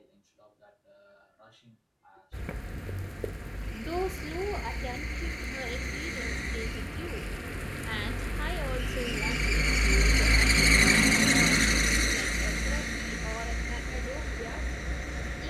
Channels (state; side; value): identical; both; correlation 1.00